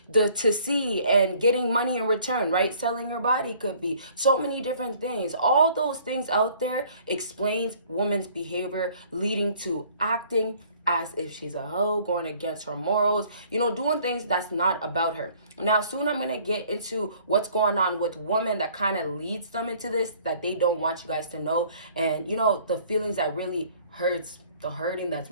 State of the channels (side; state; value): both; inverted; correlation -0.56